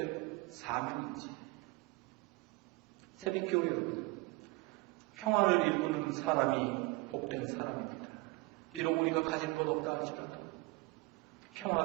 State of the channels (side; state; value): left; quieter; 23.8 dB